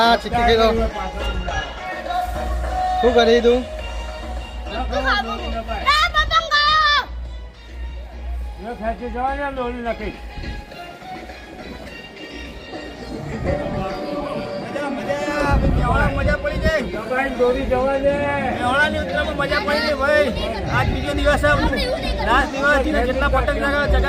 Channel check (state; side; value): identical; both; correlation 1.00